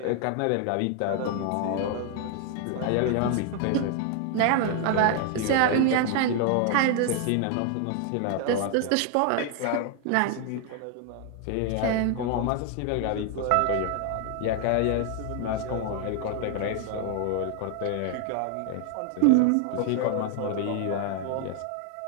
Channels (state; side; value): different; both; correlation 0.00